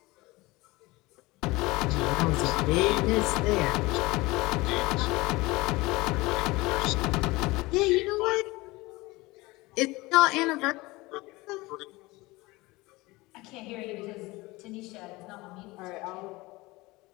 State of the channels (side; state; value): right; quieter; 21.6 dB